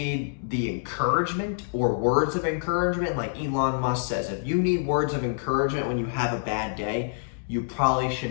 the encouragement or words of encouragement, like Elon Musk says, if you need words of encouragement when you have a bad day, you probably should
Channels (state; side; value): silent; right; digital silence